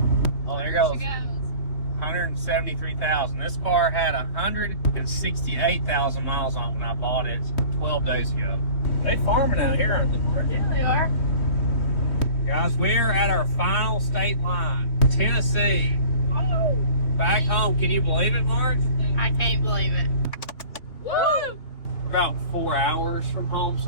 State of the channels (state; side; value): late; right; 3.1 ms